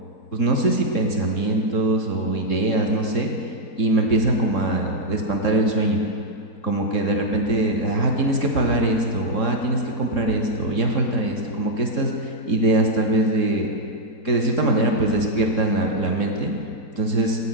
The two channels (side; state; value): right; late; 3.7 ms